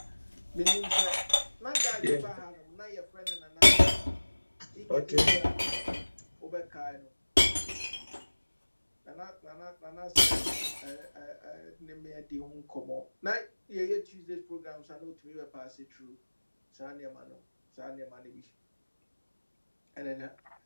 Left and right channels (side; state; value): both; inverted; correlation -1.00